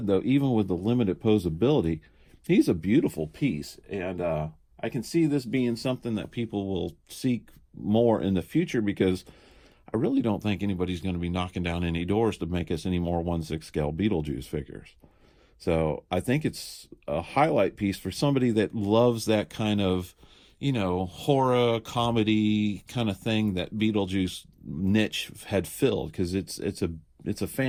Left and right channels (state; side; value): identical; both; correlation 1.00